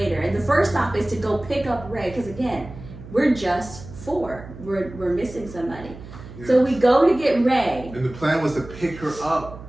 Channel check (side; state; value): right; noise; hum, 15 dB below the sound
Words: And the first stop is to go pick up Ray, because again, we're just 4. We're missing somebody. Yes. So we go to get Ray. And the plan was to pick her up